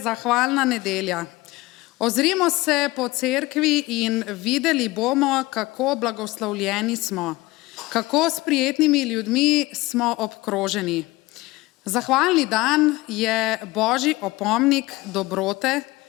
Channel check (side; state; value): right; quieter; 20.4 dB